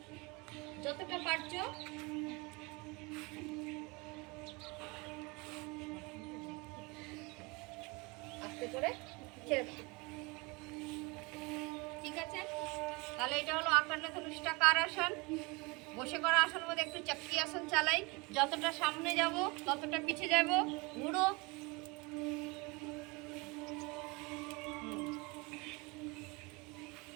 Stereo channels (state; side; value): quieter; left; 26.8 dB